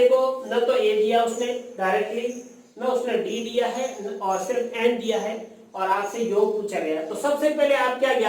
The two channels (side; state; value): both; identical; correlation 1.00